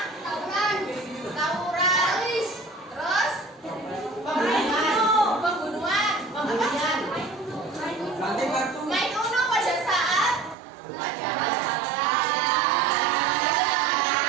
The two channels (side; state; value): left; drops out; at 10.6 s